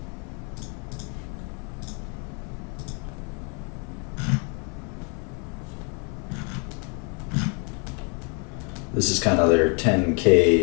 This is kind of their 10K,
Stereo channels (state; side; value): quieter; right; 36.4 dB